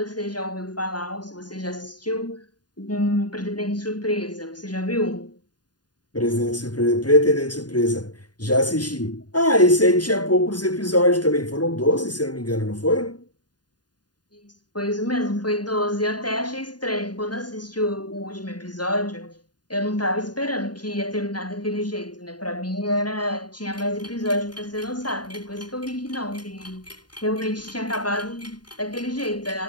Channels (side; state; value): right; late; 0.70 ms